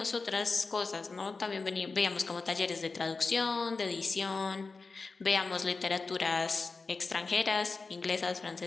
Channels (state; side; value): quieter; right; 4.1 dB